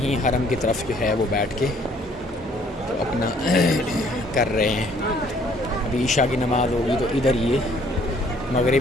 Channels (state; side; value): normal; both; correlation 0.61